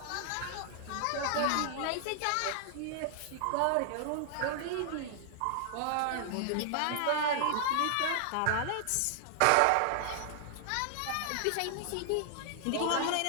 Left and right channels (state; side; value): different; both; correlation -0.01